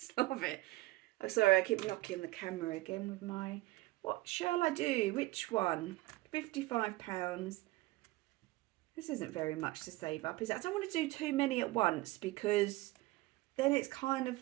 love it. Oh, sorry, I keep knocking the camera again with my What shall I do? Which one? £55. This isn't very much to save up, is it? I don't want to do too many at once because then it's kind of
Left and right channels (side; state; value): left; quieter; 19.6 dB